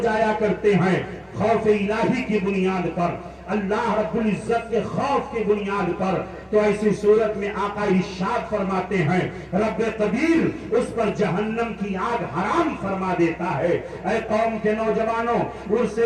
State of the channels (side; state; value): both; identical; correlation 1.00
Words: جایا کرتے ہیں، خوف الہی کی بنیاد پر، اللہ رب العزت کے خوف کی بنیاد پر، تو ایسی صورت میں آقا ارشاد فرماتے ہیں رب قدیر اس پر جہنم کی آگ حرام فرما دیتا ہے۔ اے قوم کے نوجوانوں، عرس